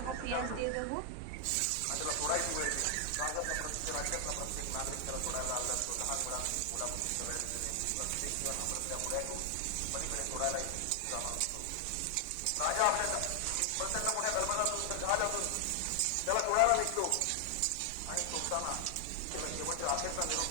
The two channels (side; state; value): both; different; correlation 0.00